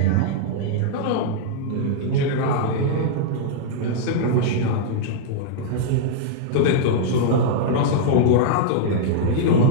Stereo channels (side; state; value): both; different; correlation -0.01